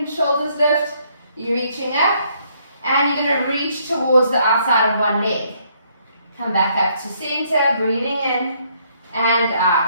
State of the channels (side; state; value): both; inverted; correlation -0.69